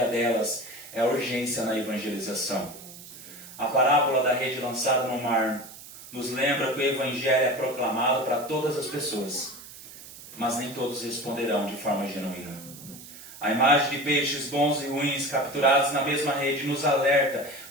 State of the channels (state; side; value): noise; right; hiss, 16 dB below the sound